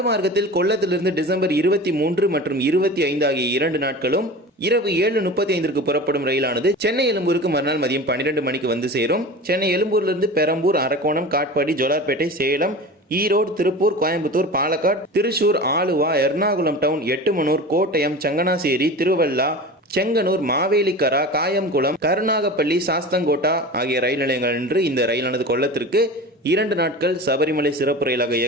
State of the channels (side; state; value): both; normal; correlation 0.33